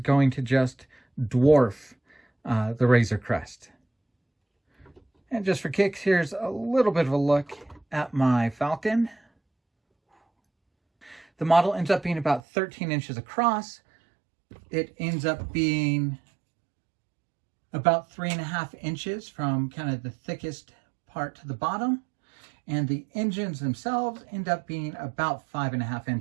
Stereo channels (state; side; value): drops out; left; at 12.4 s